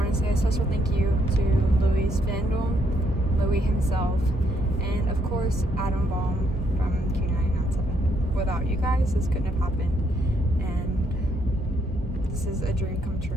to say a special thank you to Louie's fandom, Louie himself, and of course Adam Baum from Q997. Without you guys, this couldn't have happened, and this is a dream come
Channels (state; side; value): normal; both; correlation 0.73